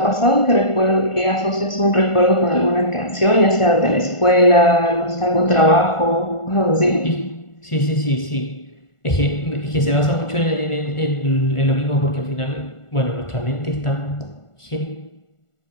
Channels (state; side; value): late; right; 1.4 ms